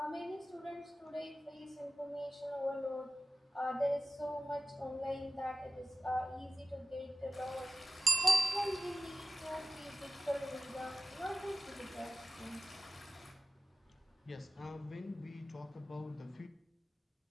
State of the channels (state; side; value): normal; both; correlation 0.95